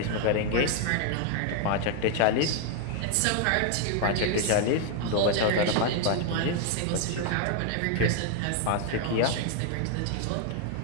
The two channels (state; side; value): different; both; correlation 0.00